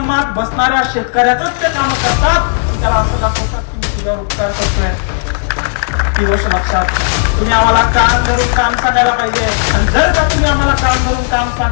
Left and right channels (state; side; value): silent; right; digital silence